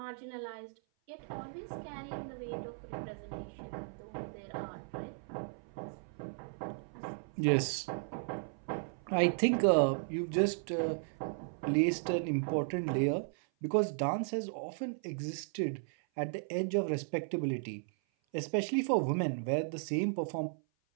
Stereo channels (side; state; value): left; silent; 54 dB below the other